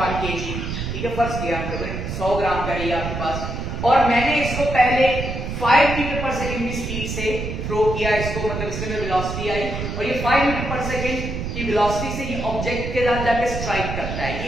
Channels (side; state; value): right; noise; rumble, 5 dB below the sound